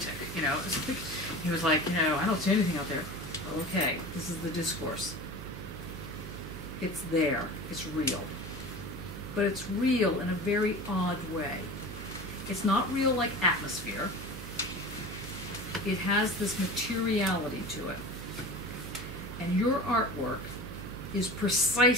you know. He was like, you know, I don't see anything out there. Well, okay, this is the discourse. It's there. It's real. But it's real in a very odd way. It's not real like atmosphere. It has this materiality to it. And your artwork is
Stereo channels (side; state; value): right; noise; hum, 10 dB below the sound